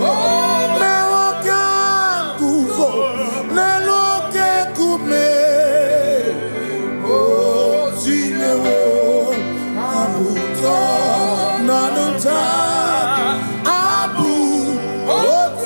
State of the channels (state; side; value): inverted; both; correlation -1.00